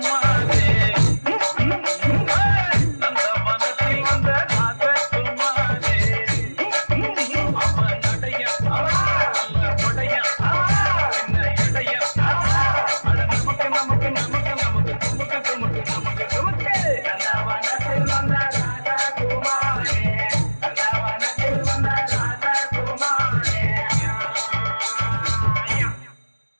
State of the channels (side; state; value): both; inverted; correlation -1.00